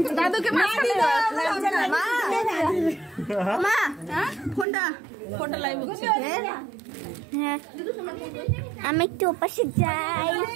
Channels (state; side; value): drops out; left; at 4.7 s